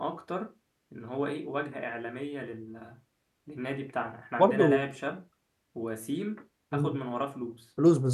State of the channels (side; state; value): both; identical; correlation 1.00